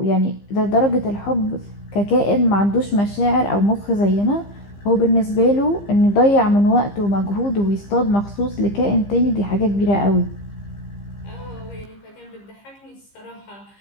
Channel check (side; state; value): right; late; 15 ms